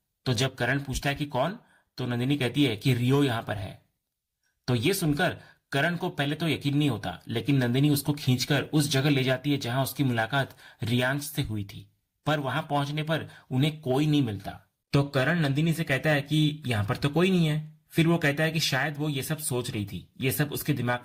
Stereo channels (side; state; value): both; identical; correlation 1.00